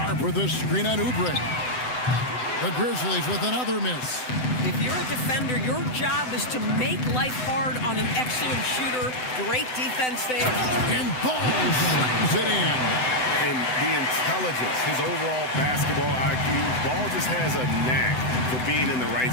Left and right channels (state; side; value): late; right; 7.9 ms